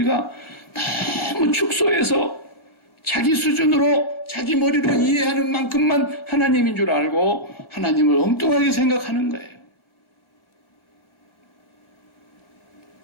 너무 축소해서 자기 수준으로 자기 머리로 이해하는 만큼만 하나님인 줄 알고 하나님을 엉뚱하게 생각하는 거예요.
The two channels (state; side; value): late; right; 1.4 ms